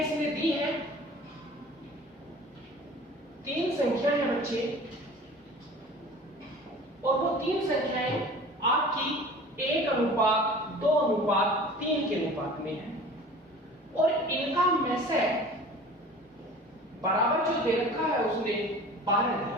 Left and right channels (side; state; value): both; normal; correlation 0.42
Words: दी है, 3 संख्या है बच्चे, और वो 3 संख्याएं आपकी 1:2:3 के अनुपात में है, और इनका में से बराबर जो दे रखा है उसने 12 दिया